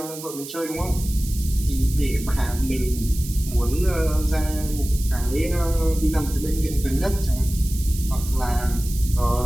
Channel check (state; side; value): noise; right; hiss, 12 dB below the sound